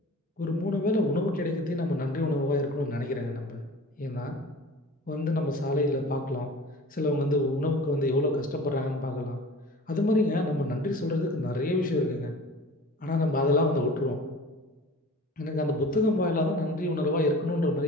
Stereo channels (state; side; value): normal; both; correlation 0.41